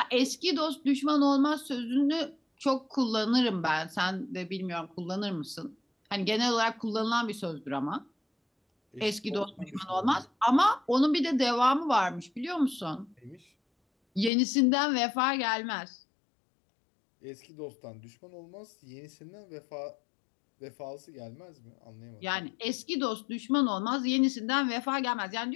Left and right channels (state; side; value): drops out; right; at 14.3 s